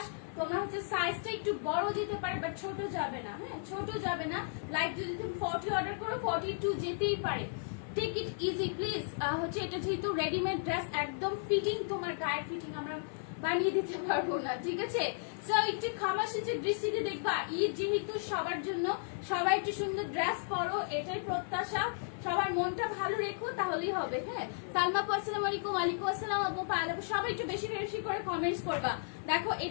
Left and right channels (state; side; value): silent; right; digital silence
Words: তোমরা হচ্ছে সাইজটা একটু বড় দিতে পারে, বাট ছোট যাবে না। হ্যাঁ ছোট যাবে না, লাইক যদি তুমি 40 অর্ডার করো 42 যেতেই পারে। Take it easy please. হচ্ছে এটা যেহেতু রেডিমেড ড্রেস, একদম ফিটিং, তোমার গায়ের ফিটিং আমরা বানিয়ে দিতে পারবো না, ঠিক আছে? সো একটু খামাশিচের দৃষ্টিতে দেখবা, ঈদ যেহেতু সবার জন্য, সবাই একটু সুন্দর ড্রেস পরো, এটাই প্রত্যাশা। সবার মনটা ভালো রেখো, তাহলেই হবে। হ্যাঁ সালমা আপু আসসালামু আলাইকুম। ওয়ালাইকুম আসসালাম আপু। পায়েল আপু সবাই একটু বেশি বেশি করে কমেন্টস করবা। দেখো